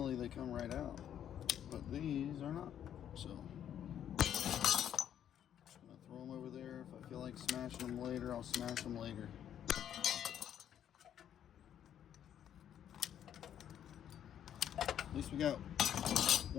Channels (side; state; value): right; quieter; 9.9 dB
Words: they come right out. But these are not. So just gonna throw them over there. If I feel like smashing them later, I'll smash them later. At least we got